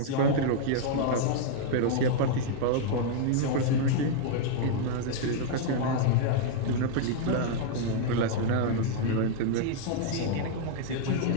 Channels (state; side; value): different; both; correlation -0.01